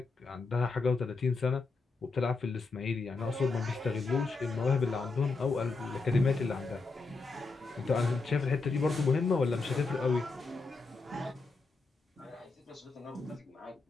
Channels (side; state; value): right; quieter; 4.0 dB